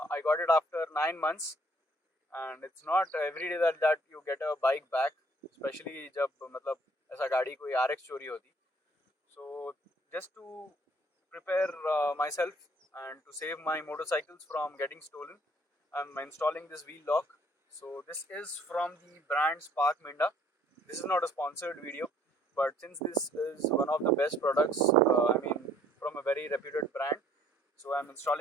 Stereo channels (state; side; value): normal; both; correlation 0.61